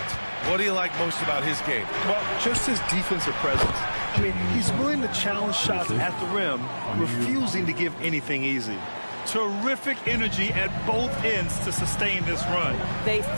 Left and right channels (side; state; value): both; inverted; correlation -1.00